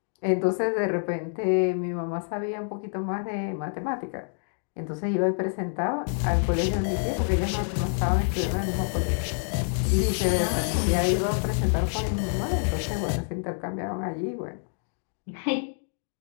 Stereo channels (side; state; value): right; silent; digital silence